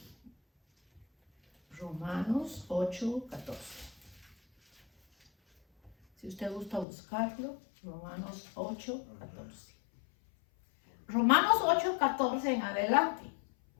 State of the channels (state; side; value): drops out; right; at 6.9 s